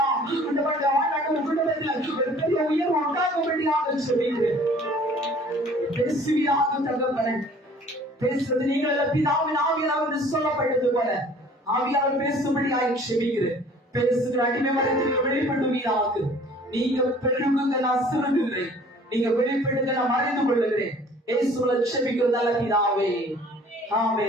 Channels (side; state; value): both; normal; correlation 0.52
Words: குடும்பங்கள் வாழ்நாட்டு குடும்பத்தில் ஒரு பெரிய உயர்வு உண்டாகும்படியாக ஜெபிக்கிறேன். பேசுவியாக தகப்பனே பேசுறது நீங்கள் பிதாவின் ஆவியானவர் என்று சொல்லப்பட்டது போல ஆவியானவர் பேசும்படியாய் ஜெபிக்கிறேன். பேசுகிற அடிமை மரத்தில் வெளிப்படுவீராக. நீங்க பெருகுங்க நான் சிறுகுகிறேன், நீங்க வெளிப்படுங்க நான் மறைந்து கொள்ளுகிறேன். இயேசுவுல ஜெபிக்கிற நல்ல பிதாவே